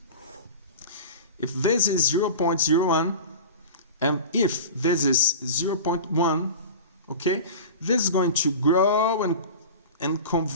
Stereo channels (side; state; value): both; inverted; correlation -0.33